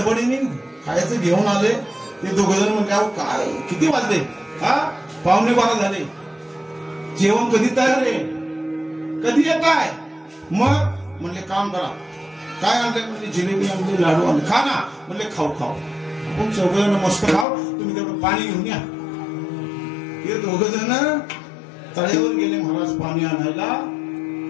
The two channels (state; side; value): drops out; right; at 17.4 s